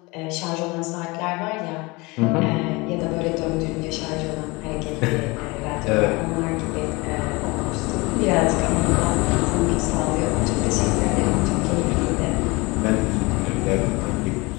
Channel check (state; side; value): quieter; right; 24.8 dB